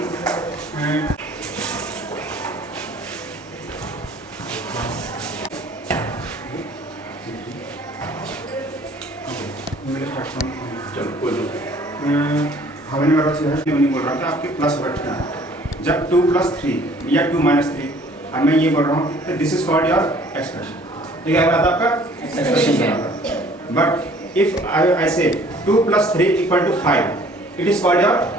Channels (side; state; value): both; normal; correlation 0.55